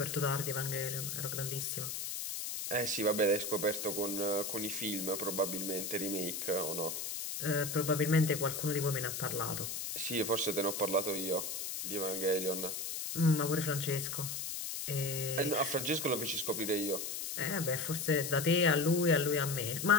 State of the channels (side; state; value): left; noise; hiss, 4 dB below the sound